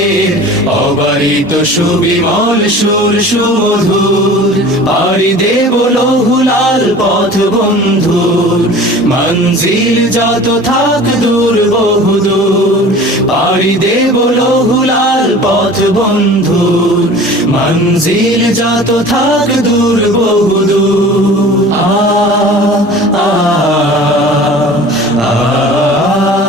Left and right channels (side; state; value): both; normal; correlation 0.42